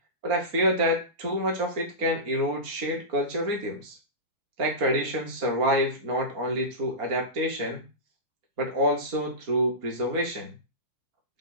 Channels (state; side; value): late; left; 4.3 ms